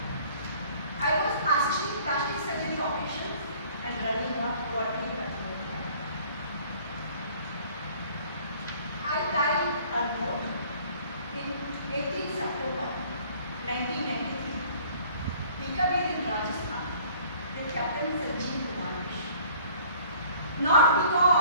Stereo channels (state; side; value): inverted; both; correlation -0.54